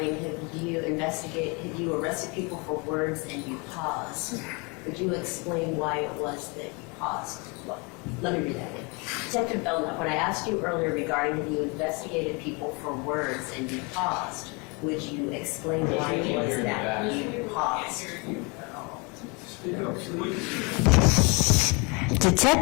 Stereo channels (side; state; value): right; quieter; 29.2 dB